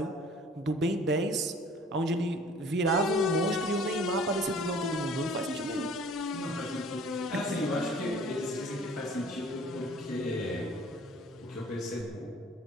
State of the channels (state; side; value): normal; both; correlation 0.50